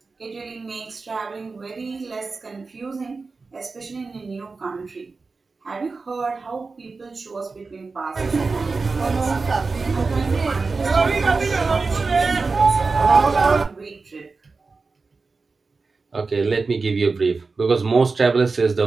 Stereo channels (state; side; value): quieter; left; 4.2 dB